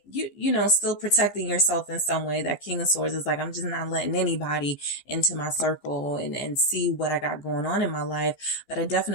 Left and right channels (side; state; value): right; late; 14 ms